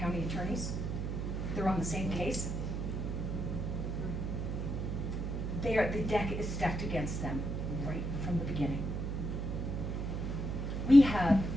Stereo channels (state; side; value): noise; right; hum, 2 dB below the sound